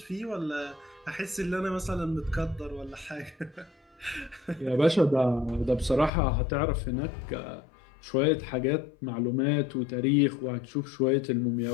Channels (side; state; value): right; drops out; at 6.1 s